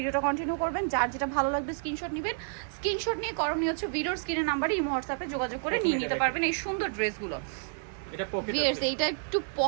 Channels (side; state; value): left; silent; digital silence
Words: কন্টিনিউ করবেন। যার যেটা ভালো লাগবে স্ক্রিনশট নেবেন। স্ক্রিনশট নিয়ে করণীয় হচ্ছে ভিডিওর স্ক্রিনের নাম্বারে ইমো হোয়াটসঅ্যাপে যোগাযোগ করে নিয়ে নিতে পারবেন এই সুন্দর ড্রেসগুলো। এইটা একটু